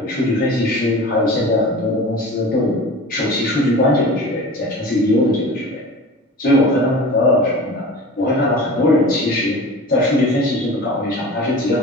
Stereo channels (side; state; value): both; normal; correlation 0.37